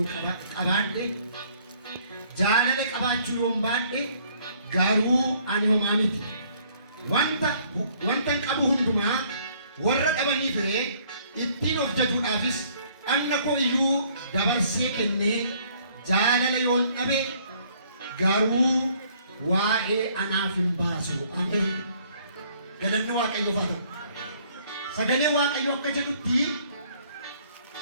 qabaadhe jaalala qabaachuu yoon baadhe garuu ani homaa miti. Wanta qabu hundumaa warra dhabanii fire ittiin of jajuudhaafis anna koo iyyuu dabarsee kennee jaalala yoon dhabe garuu waa'ee anaaf hin baasu. Ameen. Galanni Waaqayyoof haa ta'u. Sagalee Waaqayyoo akka jedhutti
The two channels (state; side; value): inverted; both; correlation -0.62